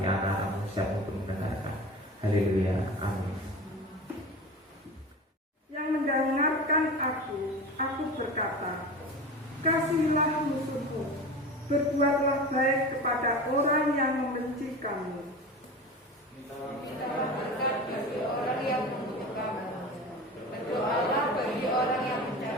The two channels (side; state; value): both; normal; correlation 0.32